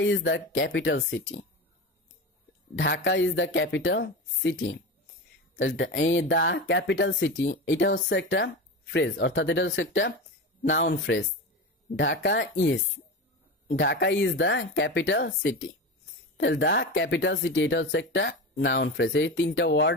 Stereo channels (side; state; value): both; normal; correlation 0.25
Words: is the capital city. Dhaka is the capital city. এই দ্য ক্যাপিটাল সিটি এটা হচ্ছে একটা ফ্রেজ, অর্থাৎ এটা হচ্ছে একটা noun phrase. Dhaka is the capital city. তাহলে দ্য ক্যাপিটাল সিটি এটা হচ্ছে একটা নাউন ফ্রেজ। এই 3টা